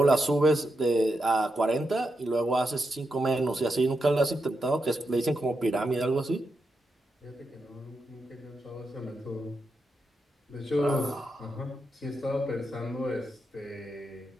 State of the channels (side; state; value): both; normal; correlation 0.85